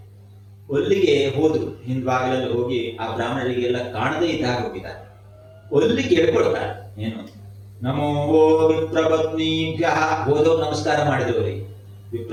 ಅಲ್ಲಿಗೆ ಹೋದ್ರು, ಹಿಂದ್ಭಾಗದಲ್ಲಿ ಹೋಗಿ ಆ ಬ್ರಾಹ್ಮಣರಿಗೆ ಎಲ್ಲ ಕಾಣದೇ ಇದ್ದಾಗ ಹೋಗಿದ್ದಾರೆ. ಅಲ್ಲಿ ಕೇಳ್ಕೊಳ್ತಾರೆ, ಏನು ನಮೋ ವಿಪ್ರಪತ್ನೀಭ್ಯ. ಹೋದವ್ರು ನಮಸ್ಕಾರ ಮಾಡಿದವರಿಗೆ,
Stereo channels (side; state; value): both; identical; correlation 1.00